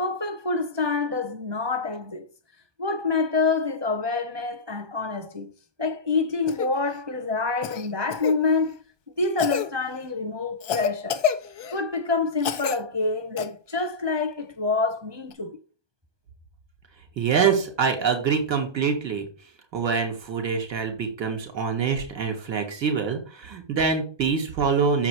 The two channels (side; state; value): left; late; 1.2 ms